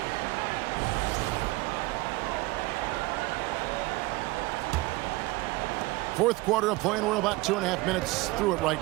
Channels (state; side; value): quieter; left; 21.3 dB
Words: Fourth quarter of play, and we're about 2.5 minutes through it right